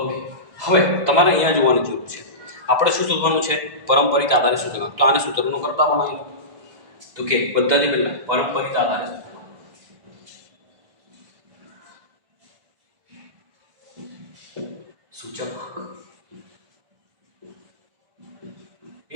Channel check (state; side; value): late; left; 2.0 ms